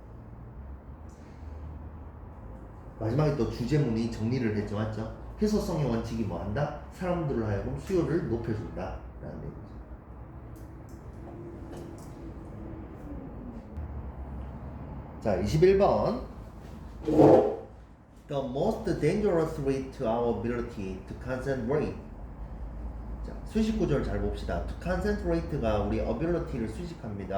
마지막에 또 주제문이 정리를 했죠, 맞죠? 희소성의 원칙이 뭐한다? 사람들을 하여금 수요를 높여준다 라는 얘기죠. 자, 21번 The most dangerous way to our ability to concentrate 자, 수식 구조를 잘 봅시다. To concentrate가 우리 ability를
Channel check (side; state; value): both; identical; correlation 1.00